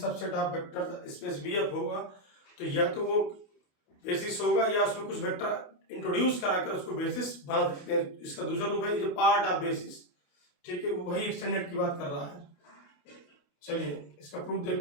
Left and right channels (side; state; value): right; late; 28 ms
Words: of vector space BF होगा तो या तो वो बेसिस होगा या उसमें कुछ वेक्टर इंट्रोड्यूस कराकर उसको बेसिस बना सकते हैं। इसका दूसरा रूप है जो पार्ट ऑफ बेसिस, ठीक है, वही एक्सटेंडेड की बात कर रहा है। चलिए, इसका प्रूफ